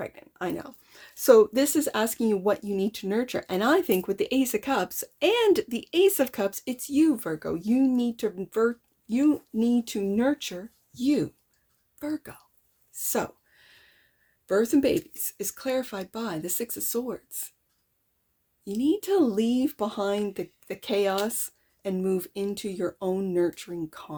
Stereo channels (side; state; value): both; identical; correlation 1.00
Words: I know. So this is asking you what you need to nurture. And I think with the Ace of Cups and the Ace of Cups, it's you, Virgo. You need to nurture you, Virgo. So, birth and babies is clarified by the 6 of Swords. You need to leave behind the chaos and move into your own nurturing